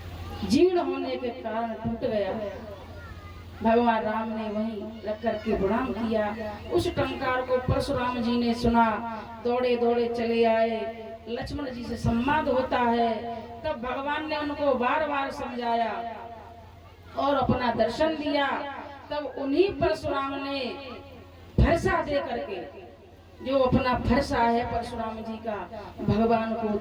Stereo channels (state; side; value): identical; both; correlation 1.00